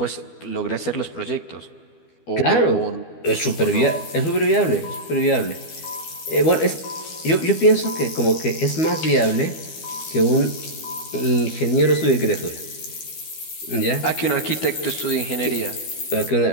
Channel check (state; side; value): late; right; 12 ms